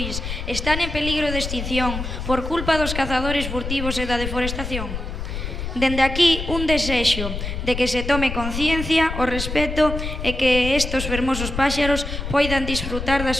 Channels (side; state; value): left; noise; rumble, 5 dB below the sound